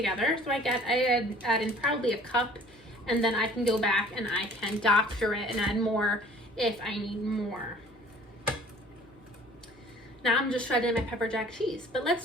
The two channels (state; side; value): normal; both; correlation 0.50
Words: So I add in probably a cup, and then I can go back and I can doctor it and add more if I need more. Now I'm just shredding my pepper jack cheese, but let's